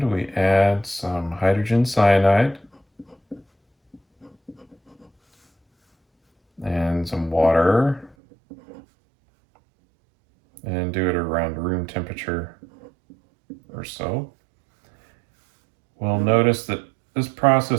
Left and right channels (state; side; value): drops out; left; at 8.2 s